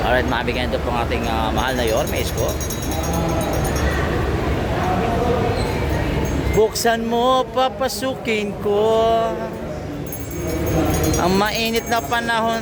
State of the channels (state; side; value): identical; both; correlation 1.00